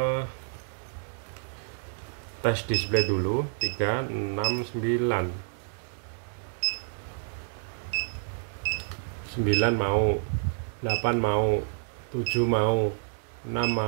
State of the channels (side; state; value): left; silent; 59 dB below the other